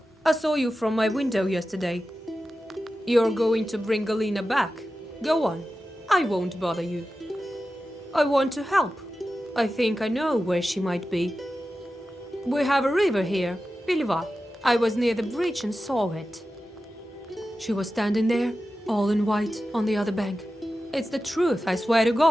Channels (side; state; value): both; normal; correlation 0.93